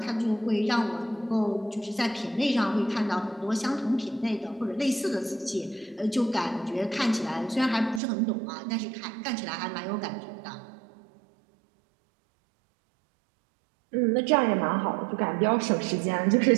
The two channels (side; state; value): left; drops out; at 8.0 s